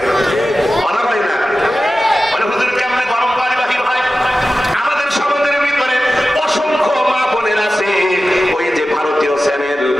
কথা হয় না? মানে হুজুর কেমনে গরম পানি বাহির হয়? আমাদের সমাজের ভিতরে অসংখ্য মা বোনের আছে, ওই যে ভারতীয় চ্যানেল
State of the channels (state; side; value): normal; both; correlation 0.95